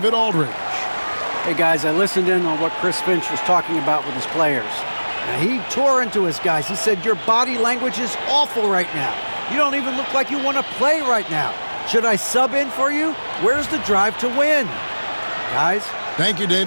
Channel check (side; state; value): both; inverted; correlation -1.00